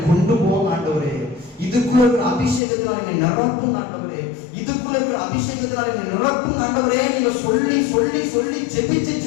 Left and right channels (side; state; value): right; drops out; at 2.6 s